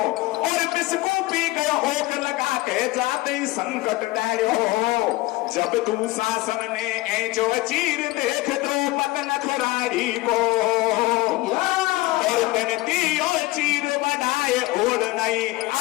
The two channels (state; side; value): quieter; right; 19.9 dB